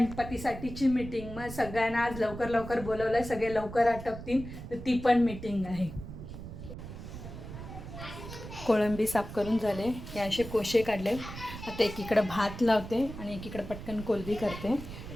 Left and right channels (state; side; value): noise; right; rumble, 11 dB below the sound